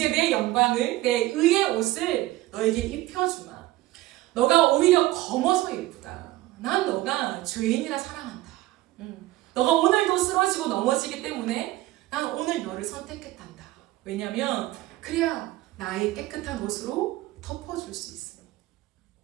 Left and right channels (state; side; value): quieter; left; 17.2 dB